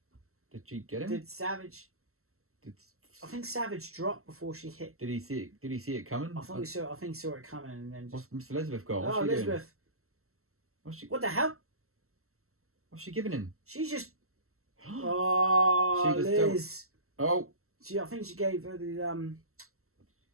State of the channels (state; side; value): late; left; 0.63 ms